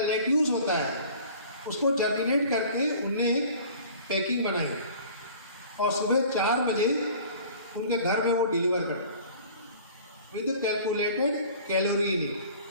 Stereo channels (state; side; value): inverted; both; correlation -0.46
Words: होता है, उसको जर्मिनेट करके उनने एक पैकिंग बनाई और सुबह 4 बजे उनके घर में वो डिलीवर करते with calculated calorie in it.